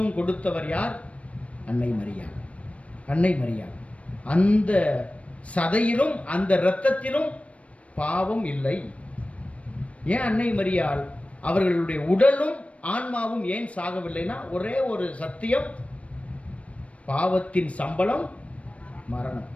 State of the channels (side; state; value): right; late; 0.064 ms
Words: கொடுத்தவர் யார்? அன்னை மரியாள். அன்னை மரியாள். அந்த சதையிலும் அந்த இரத்தத்திலும் பாவம் இல்லை. ஏன் அன்னை மரியாள் அவர்களுடைய உடலும் ஆன்மாவும் ஏன் சாகவில்லைன்னா, ஒரே ஒரு சத்தியம், பாவத்தின் சம்பளம் மரணம்.